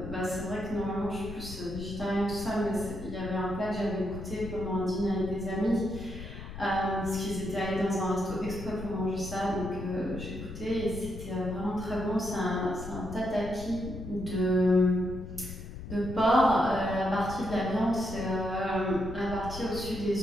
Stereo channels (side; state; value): left; noise; rumble, 10 dB below the sound